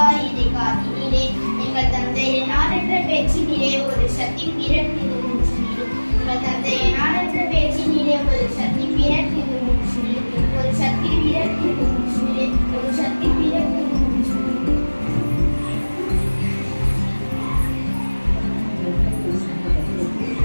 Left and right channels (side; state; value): both; inverted; correlation -1.00